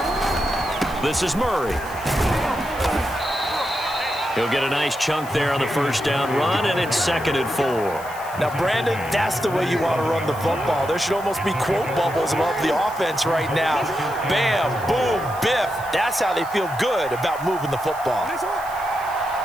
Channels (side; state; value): left; noise; hiss, 18 dB below the sound